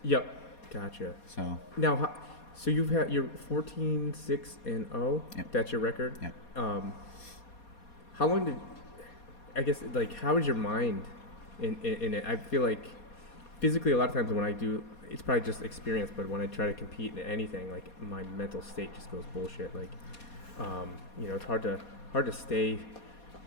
Yep. Gotcha. So now, so you're 14-6-0. Yep. That's your record. Yep. How long how is your mind in it? I feel like physically a lot of times when I do, it's probably just experience, but when I try to compete in anything, like my mental state just goes bullshit. Like, it's hard to stay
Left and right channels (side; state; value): right; late; 4.2 ms